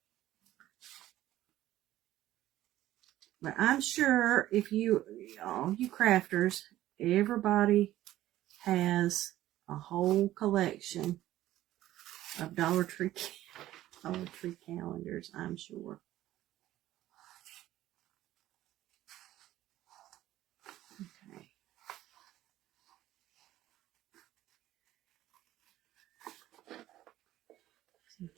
but I'm sure if all you crafters, everybody has a whole collection of Dollar Tree calendars, I'm sure. Okay. So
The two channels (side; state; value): left; quieter; 14.3 dB